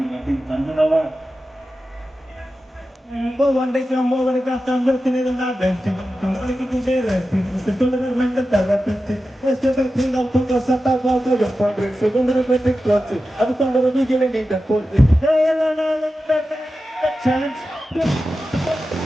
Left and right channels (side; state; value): both; normal; correlation 0.92